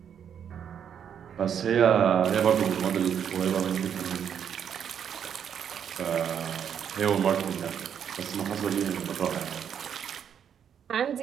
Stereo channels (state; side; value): quieter; left; 8.4 dB